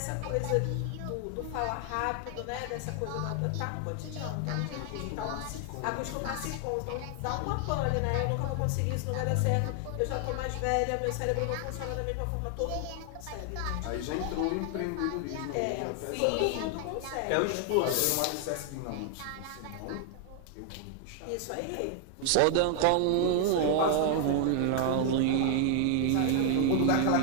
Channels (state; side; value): different; both; correlation 0.00